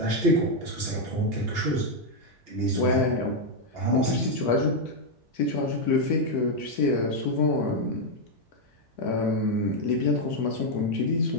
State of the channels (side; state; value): both; normal; correlation 0.01